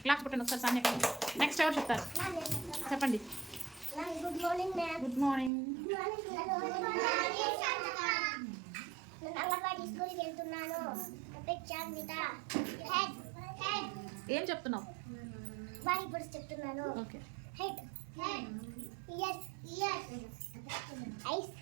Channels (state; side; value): drops out; left; at 5.5 s